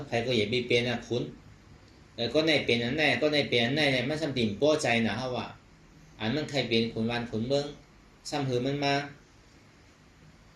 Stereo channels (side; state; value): both; identical; correlation 1.00